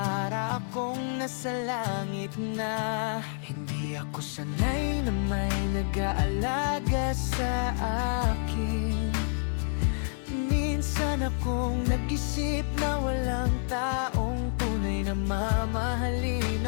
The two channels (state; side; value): silent; right; digital silence